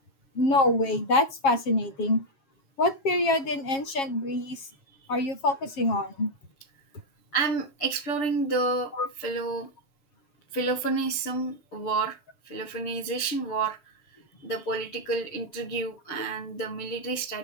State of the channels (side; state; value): right; late; 6.8 ms